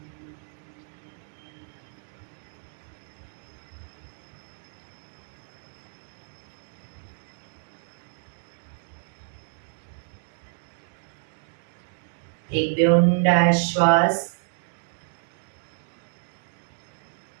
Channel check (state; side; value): silent; left; digital silence